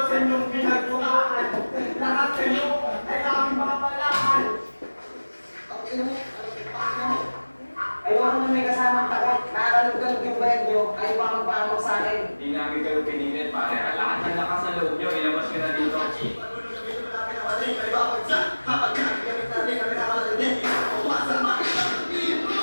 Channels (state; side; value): inverted; both; correlation -1.00